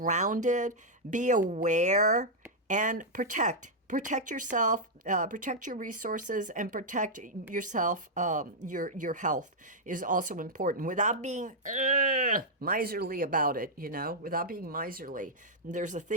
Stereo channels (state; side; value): normal; both; correlation -0.05